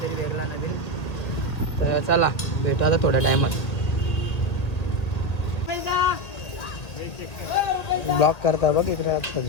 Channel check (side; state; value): right; late; 1.8 ms